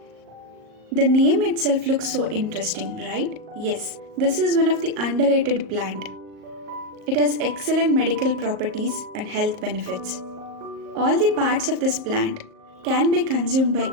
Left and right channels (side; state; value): left; late; 38 ms